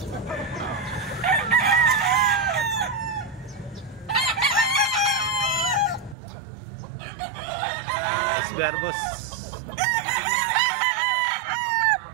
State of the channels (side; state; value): left; drops out; at 6.2 s